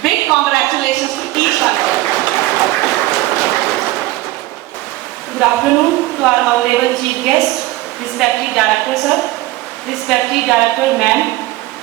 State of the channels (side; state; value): left; quieter; 18.0 dB